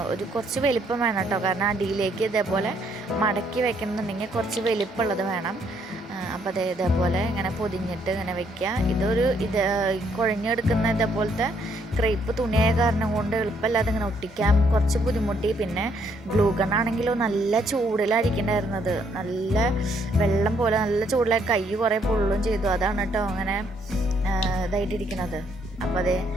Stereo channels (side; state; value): both; normal; correlation 0.70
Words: ഒരു കുറച്ച് വലിപ്പം വേണം കേട്ടോ. കാരണം അടിയിലേക്ക് ഇതേപോലെ മടക്കി വെക്കണമെന്നുണ്ടെങ്കിൽ കുറച്ച് വലിപ്പമുള്ളത് വേണം. അപ്പോൾ ഇതേപോലെ ഇങ്ങനെ പൊതിഞ്ഞിട്ട് ഇങ്ങനെ വെക്കുക. ഇത് കുഴഞ്ഞെടുക്കുന്ന ഇതേപോലത്തെ ക്രേപ്പ് തുണിയായ കാരണം കൊണ്ട് എളുപ്പമല്ലാതെ ഇങ്ങനെ ഒട്ടിക്കാൻ കുറച്ച് ബുദ്ധിമുട്ടി. പിന്നെ ഗ്ലൂ ഗണ്ണാണെങ്കിലോ നല്ല ചൂടിലായിരിക്കണ്ടായിരുന്നത്, നല്ല വെള്ളം പോലെ നല്ല ചൂടിലായി കൈ കുറേ പൊള്ളും ചെയ്തു. അതാണ് കേട്ടോ അങ്ങനെ ഇതായിട്ടിരിക്കുന്നത്. അപ്പോൾ